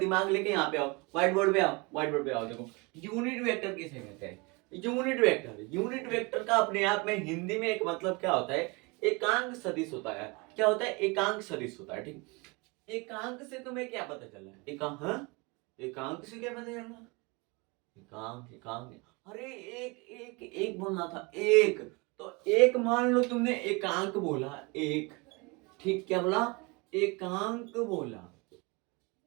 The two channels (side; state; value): left; quieter; 27.7 dB